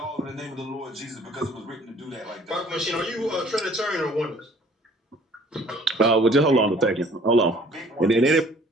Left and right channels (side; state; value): both; normal; correlation 0.55